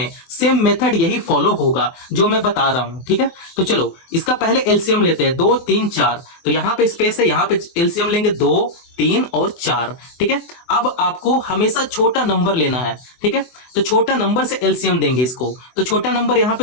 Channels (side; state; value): right; late; 24 ms